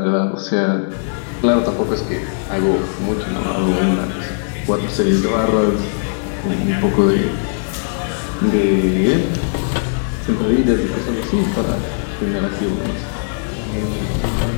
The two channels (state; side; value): silent; right; 56 dB below the other